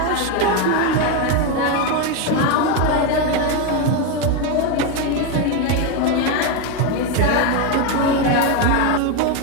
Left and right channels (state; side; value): different; both; correlation 0.02